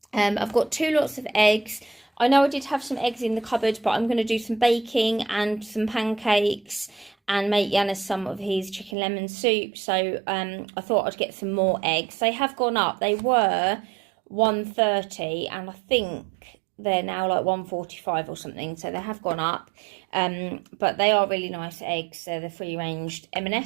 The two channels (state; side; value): drops out; left; at 9.0 s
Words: I've got 2 lots of eggs. I know I did have some eggs in the cupboard, but I'm going to do some baking and some pancakes and make Yanis some of his chicken lemon soup. So I thought I'd get some more eggs. They have gone up. They were £1.30 and I think they're now like £1.45 or something. So they have gone up. But they are really nice eggs. They're the free-ranged